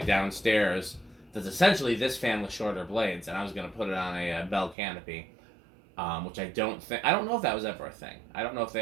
That's essentially this fan with shorter blades, and I was going to put it on a bell canopy, which I don't know if that was ever a thing. I don't know if they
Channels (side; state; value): left; drops out; at 4.8 s